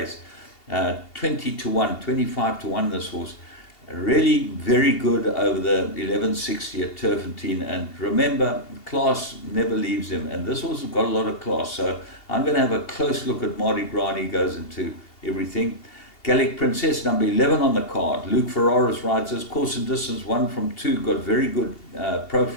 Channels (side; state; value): right; late; 2.7 ms